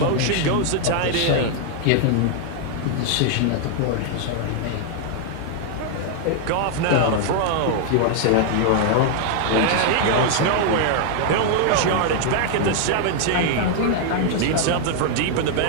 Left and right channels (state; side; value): different; both; correlation 0.00